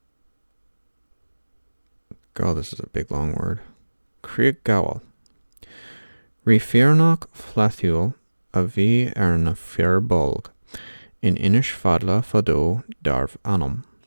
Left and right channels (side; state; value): both; inverted; correlation -1.00